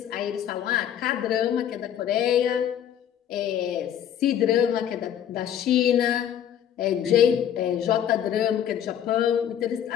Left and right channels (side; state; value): right; quieter; 9.9 dB